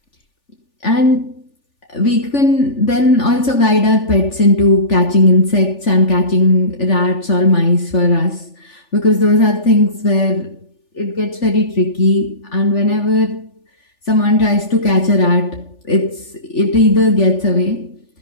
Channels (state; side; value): late; right; 3.4 ms